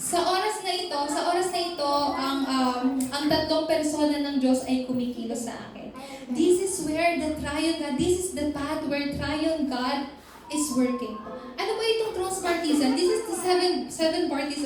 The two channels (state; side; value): identical; both; correlation 1.00